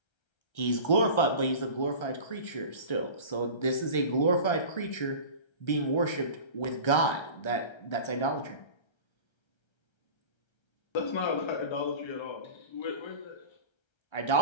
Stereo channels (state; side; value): late; right; 1.3 ms